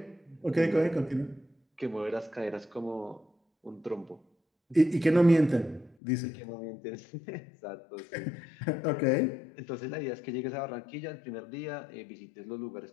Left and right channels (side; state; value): right; drops out; at 6.0 s